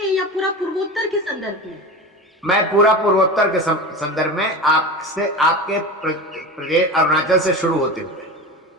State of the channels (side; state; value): both; normal; correlation 0.28